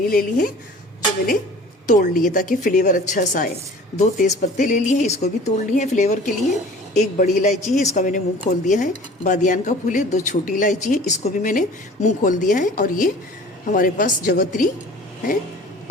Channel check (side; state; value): both; normal; correlation 0.45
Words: ले ली है जो मैंने तोड़ ली है ताकि फ्लेवर अच्छा सा आए। 2 तेज़ पत्ते ले लिए हैं, इसको भी तोड़ लिए हैं फ्लेवर के लिए। 1 बड़ी इलायची है, इसका मैंने मुंह खोल दिया है। बादियान का फूल है। 2 छोटी इलायची है, इसको भी मैंने मुंह खोल दिया है। और ये हमारे पास जवत्री है